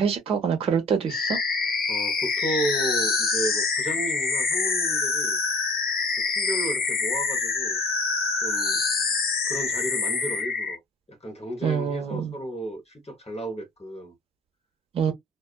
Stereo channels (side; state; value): both; normal; correlation 0.47